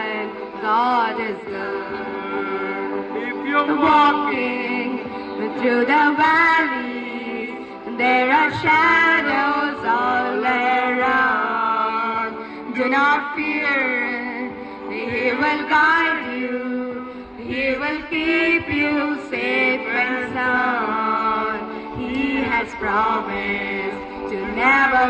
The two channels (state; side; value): identical; both; correlation 1.00